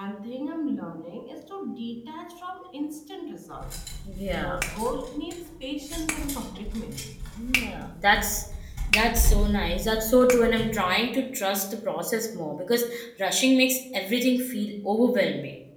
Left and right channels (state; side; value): identical; both; correlation 1.00